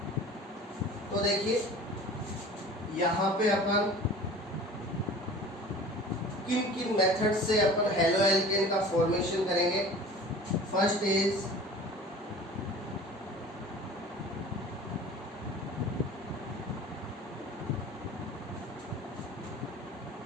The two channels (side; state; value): both; normal; correlation 0.42